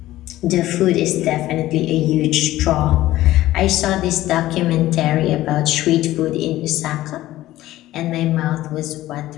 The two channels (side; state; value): right; quieter; 15.5 dB